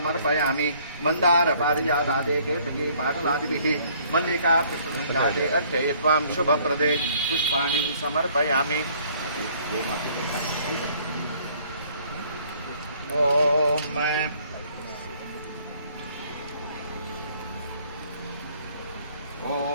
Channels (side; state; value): both; inverted; correlation -0.60